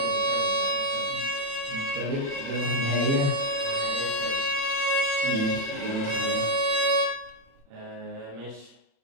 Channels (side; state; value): left; late; 36 ms